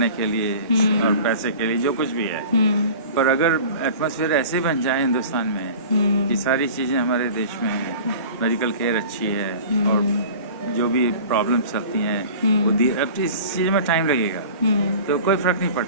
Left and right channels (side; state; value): both; inverted; correlation -0.40